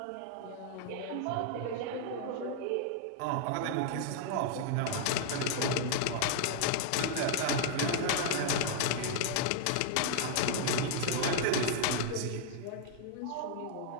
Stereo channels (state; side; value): different; both; correlation -0.01